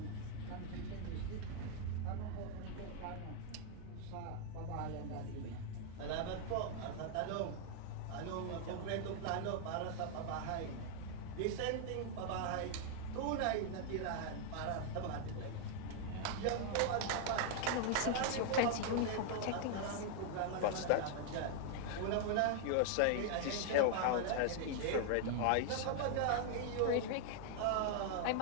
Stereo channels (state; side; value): different; both; correlation 0.00